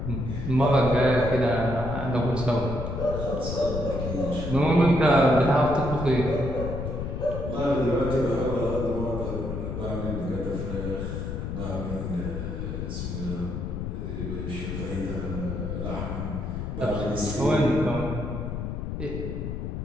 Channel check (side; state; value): left; noise; rumble, 4 dB below the sound